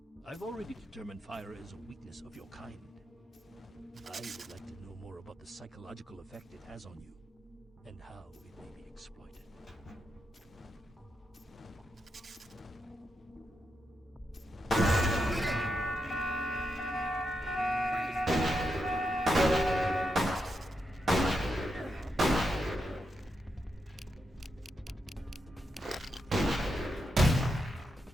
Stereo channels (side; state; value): both; normal; correlation 0.85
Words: I've already determined fire is a weakness of your kind. I would like to know more about the psychological effect it has on you, and how it may be exploited.